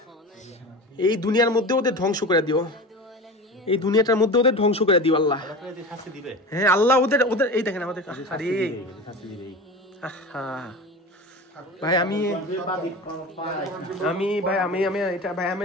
এই দুনিয়ার মধ্যে ওদের ধ্বংস করে দিও, এই দুনিয়াটার মধ্যে ওদের ধ্বংস করে দিও আল্লাহ। হ্যাঁ আল্লাহ ওদের ওদের এই দেখেন আমাদের আরে ভাই আমি ভাই আমি এটা ভাই আমি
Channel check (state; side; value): normal; both; correlation 0.31